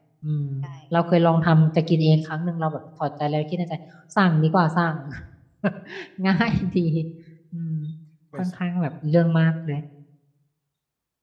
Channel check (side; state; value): both; identical; correlation 1.00